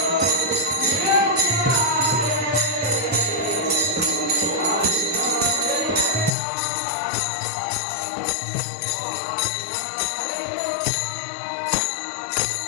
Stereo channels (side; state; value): right; drops out; at 6.3 s